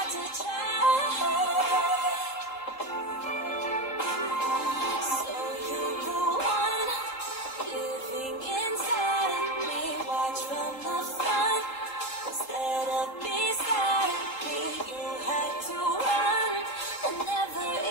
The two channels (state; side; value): late; right; 3.8 ms